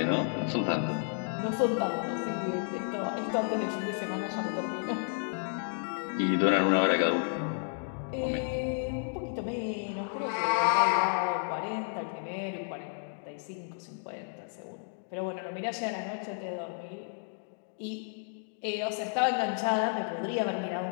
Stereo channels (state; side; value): silent; right; digital silence